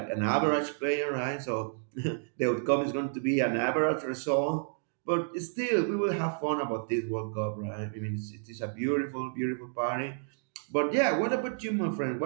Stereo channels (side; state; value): left; silent; digital silence